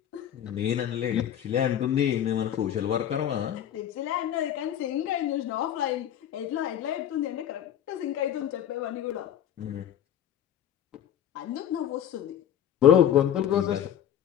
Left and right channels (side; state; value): right; quieter; 10.3 dB